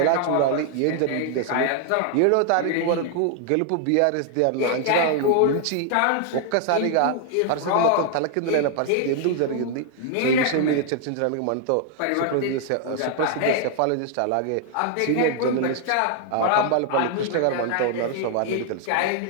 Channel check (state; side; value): different; both; correlation 0.00